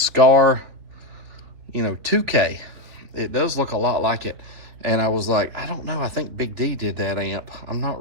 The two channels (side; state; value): left; late; 3.7 ms